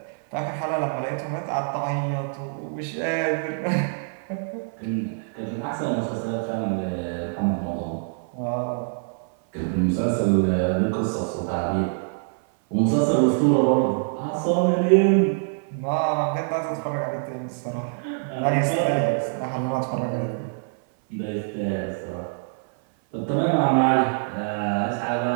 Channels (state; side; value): silent; left; 57 dB below the other